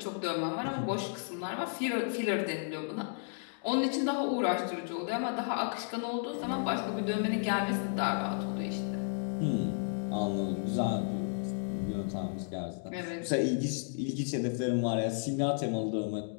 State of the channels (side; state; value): right; silent; digital silence